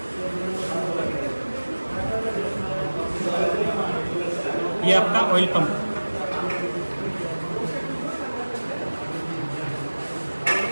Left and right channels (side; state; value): both; inverted; correlation -1.00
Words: ये आपका ऑयल पंप।